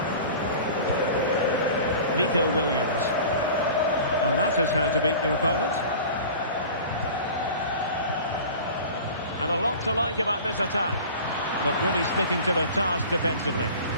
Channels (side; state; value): both; inverted; correlation -0.39